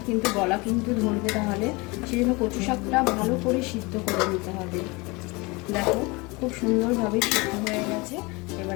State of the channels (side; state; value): right; quieter; 25.7 dB